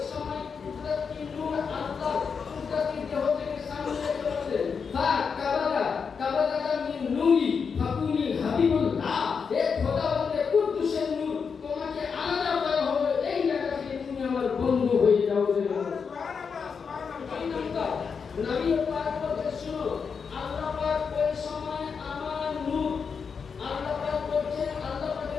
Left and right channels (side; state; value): right; quieter; 5.9 dB